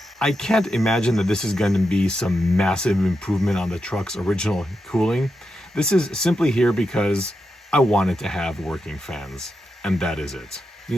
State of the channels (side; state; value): both; normal; correlation 0.87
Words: I can't imagine that this is going to be some massive improvement on the truck's original cooling. This is simply here because I wanted to have working fans, and that is it.